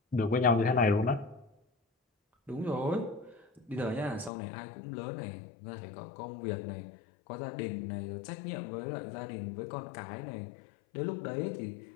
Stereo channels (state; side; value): drops out; right; at 4.3 s